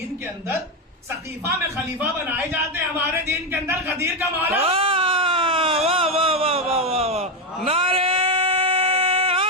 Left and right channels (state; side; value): normal; both; correlation 0.08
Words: کے اندر سقیفہ میں خلیفہ بنائے جاتے ہیں، ہمارے دین کے اندر غدیر کا مولا. واہ واہ واہ واہ واہ واہ. نعرے